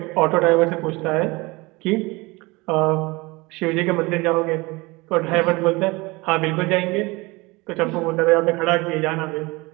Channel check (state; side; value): quieter; left; 24.0 dB